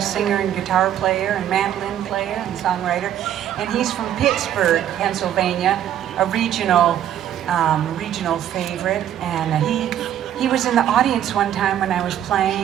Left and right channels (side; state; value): left; quieter; 10.8 dB